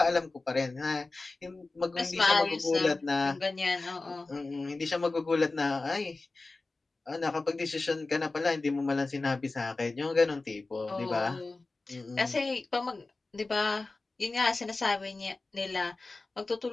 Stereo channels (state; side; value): quieter; right; 3.4 dB